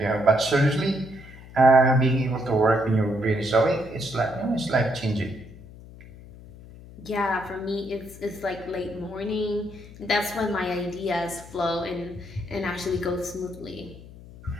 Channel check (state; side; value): noise; left; hum, 18 dB below the sound